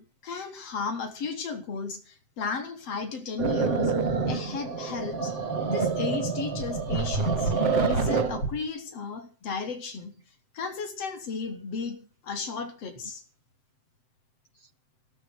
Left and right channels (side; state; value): right; late; 7.7 ms